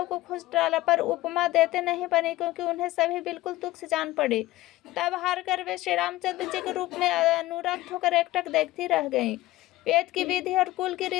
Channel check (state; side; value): quieter; right; 17.3 dB